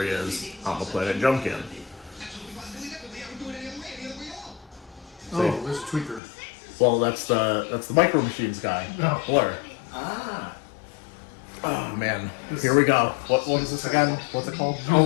he is on the planet Junkion. Oh, there's a tweaker. Well, that's the Micro Machines guy, Oh. Blur. Ah. Oh man, here we go. What is this again? What's it called?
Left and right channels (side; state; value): right; drops out; at 6.2 s